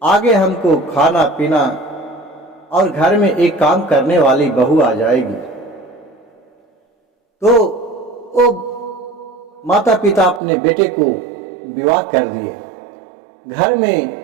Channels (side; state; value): left; drops out; at 10.4 s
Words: आगे हमको खाना पीना और घर में एक काम करने वाली बहू आ जाएगी। तो वो माता पिता अपने बेटे को विवाह कर दिए। घर